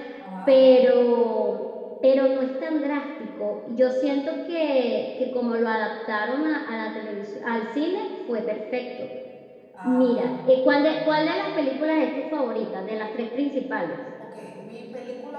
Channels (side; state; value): both; identical; correlation 1.00